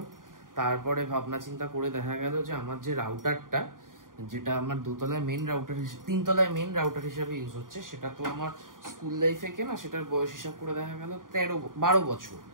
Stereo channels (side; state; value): left; late; 0.90 ms